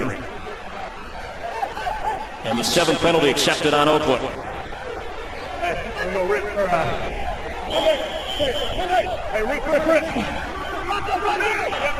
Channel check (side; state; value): both; identical; correlation 1.00